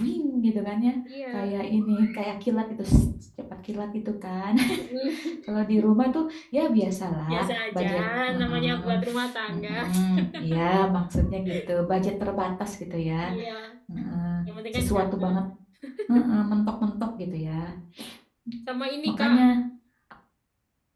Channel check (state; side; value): identical; both; correlation 1.00